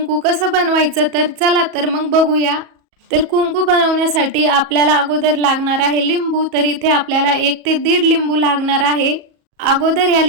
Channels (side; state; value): left; late; 37 ms